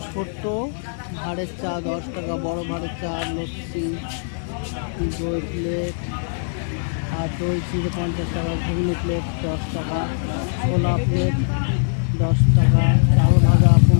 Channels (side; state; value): right; silent; digital silence